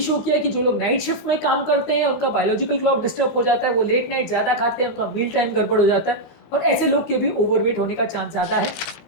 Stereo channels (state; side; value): late; right; 19 ms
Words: किया है कि जो लोग नाइट शिफ्ट में काम करते हैं उनका बायोलॉजिकल क्लॉक डिस्टर्ब हो जाता है, वो लेट नाइट ज़्यादा खाते हैं, उनका मील टाइम गड़बड़ हो जाता है और ऐसे लोग के भी ओवरवेट होने का चांस ज़्यादा है।